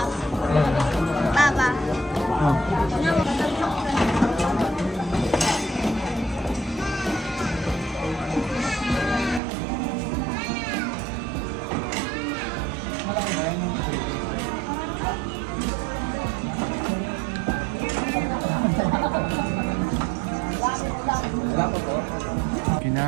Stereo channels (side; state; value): left; drops out; at 9.4 s